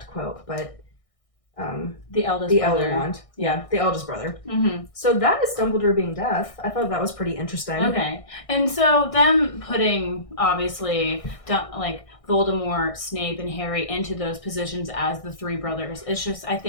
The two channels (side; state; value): right; late; 1.6 ms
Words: quote, but the eldest brother. Elder wand. Yeah, the eldest brother. So that is Dumbledore being deaf. I thought that was pretty interesting. Okay. And so them putting, obviously, like Voldemort, Snape, and Harry into those positions as the three brothers, it's just, I